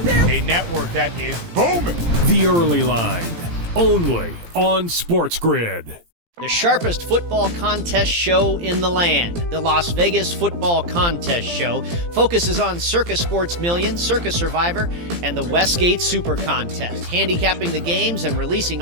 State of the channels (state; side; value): late; left; 17 ms